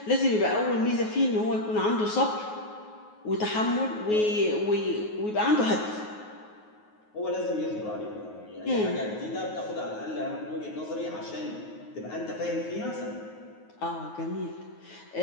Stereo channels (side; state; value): right; late; 9.4 ms